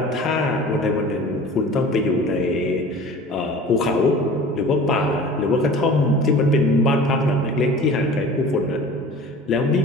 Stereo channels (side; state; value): both; normal; correlation 0.41